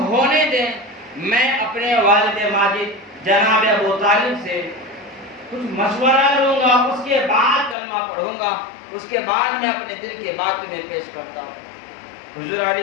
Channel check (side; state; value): right; drops out; at 7.8 s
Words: ہونے دیں، میں اپنے والد ماجد جناب ابو طالب سے کچھ مشورہ لوں گا، اس کے بعد کلمہ پڑھوں گا، اس کے بعد میں اپنے دل کی بات تمہیں پیش کرتا ہوں۔ حضور